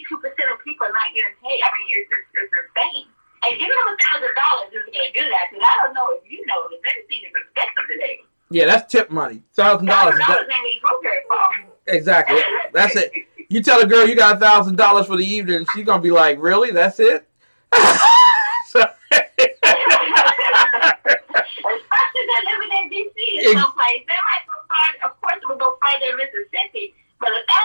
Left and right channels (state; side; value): inverted; both; correlation -1.00